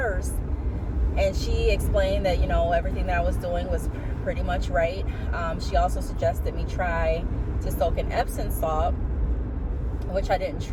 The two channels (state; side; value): identical; both; correlation 1.00